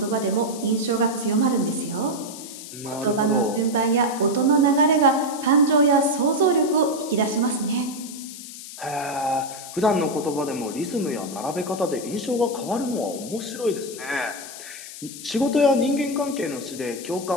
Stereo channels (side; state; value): left; noise; hiss, 13 dB below the sound